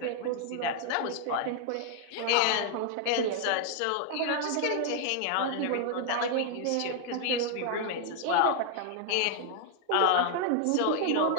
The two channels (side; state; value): both; different; correlation -0.01